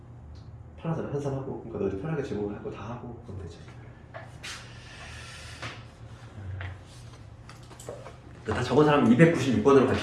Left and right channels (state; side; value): identical; both; correlation 1.00